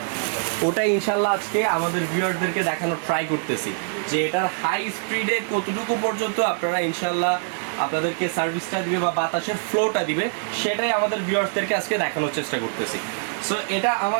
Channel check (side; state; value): left; silent; digital silence